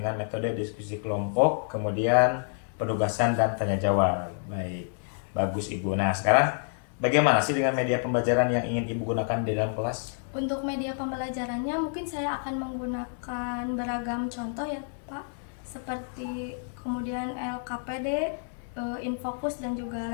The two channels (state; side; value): silent; right; digital silence